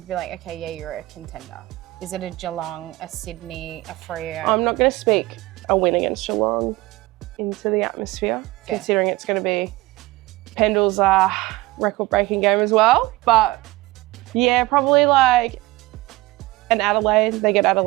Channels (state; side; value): quieter; left; 19.9 dB